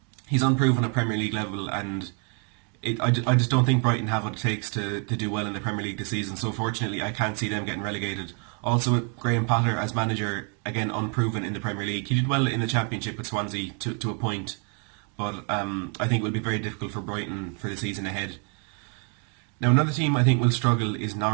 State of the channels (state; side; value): quieter; left; 39.5 dB